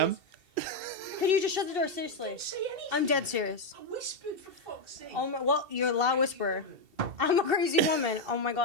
Please? Can you just shut the door? Seriously, I'm dead serious. I whispered, for fuck's sake. Oh my, well, you're a loud whisperer. I'm a crazy woman. Oh my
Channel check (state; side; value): late; left; 2.7 ms